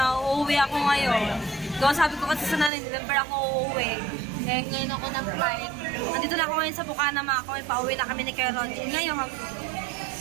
uuwi ako ngayon. So sabi ko kasi sa nanay, December ako uuwi. Eh, ngayon ako ng flight. Nandito na ako ngayon sa Bukana mga kami, pauwi na kami ni Kuya Roger. Ngayon,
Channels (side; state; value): left; drops out; at 2.7 s